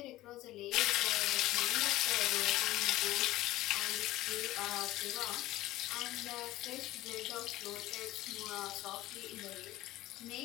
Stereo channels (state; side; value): quieter; right; 16.5 dB